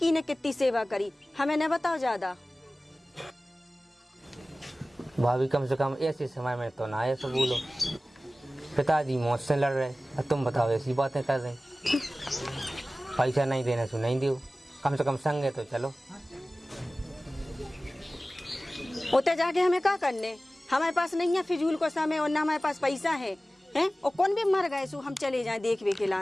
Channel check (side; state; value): both; normal; correlation 0.97